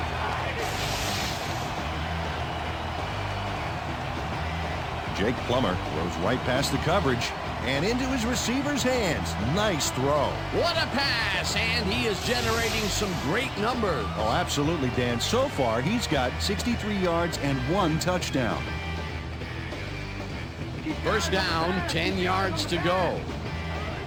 Jake Plummer throws right past the coverage and into his receiver's hands. Nice throw. What a pass, and he is generating some great numbers. Oh, absolutely, Dan. So far, he's got 63 yards and 1 touchdown. First down, 10 yards to go.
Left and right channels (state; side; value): identical; both; correlation 1.00